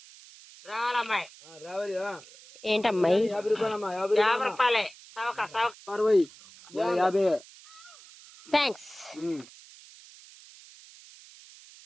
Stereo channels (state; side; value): noise; right; hiss, 21 dB below the sound